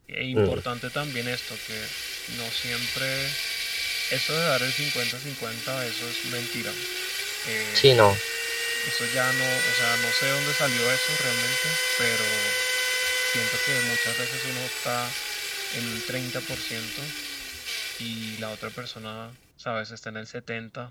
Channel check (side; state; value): both; identical; correlation 1.00